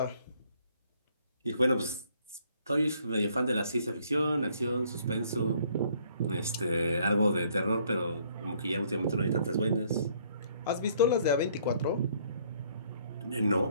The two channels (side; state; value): both; inverted; correlation -0.64